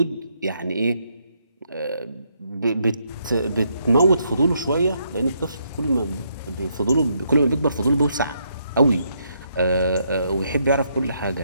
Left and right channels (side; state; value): both; inverted; correlation -0.75